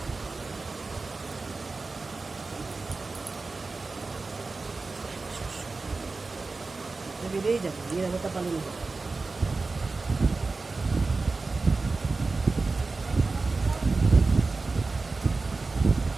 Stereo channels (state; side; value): quieter; left; 3.8 dB